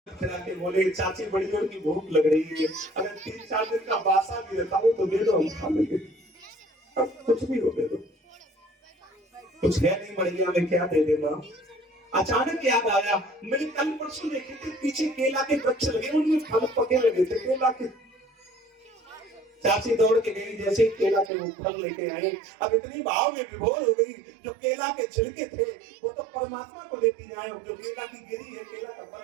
खिला के बोले चाची बड़ी जोर की भूख लग रही है, अगर 3-4 दिन का बासा भी रहता हो तो दे दो, हम खा लेंगे। अब कुछ भी हो दे दो, कुछ है नहीं बढ़िया में क्या दे देना। अचानक याद आया, मैंने कल परसों देखे थे पीछे केला के वृक्ष लगे, उनमें फल पके लगे थे केला के। चाची दौड़ के गई, जैसे ही केला के वो फल लेके आए, अब इतनी भाव में विभोर हो गई, जो केला के छिलके थे वो तो परमात्मा को लेती जाए, जो केला की गिरी है केला का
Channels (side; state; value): left; drops out; at 21.3 s